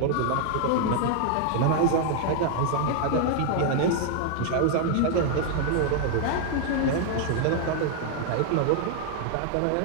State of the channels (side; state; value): both; different; correlation 0.00